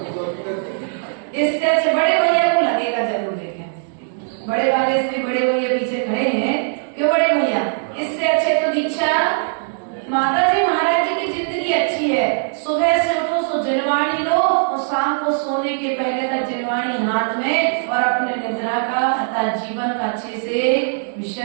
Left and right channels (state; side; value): silent; left; digital silence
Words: इससे अच्छे बड़े भैया को लगेगा जरूर। देखें बड़े वाले से भी बड़े भैया पीछे खड़े हैं, क्यों बड़े भैया? इससे अच्छे तो दीक्षा। माता जी महाराज जी की जिंदगी अच्छी है, सुबह से उठो सो जलवाणी लो और शाम को सोने के पहले तक जलवाणी हाथ में, और अपने निद्रा का अर्थात जीवन का अच्छे से